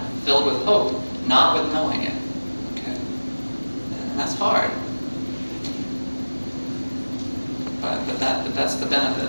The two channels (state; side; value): inverted; both; correlation -1.00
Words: filled with hope, not with knowing it. Okay? And that's hard. But that's the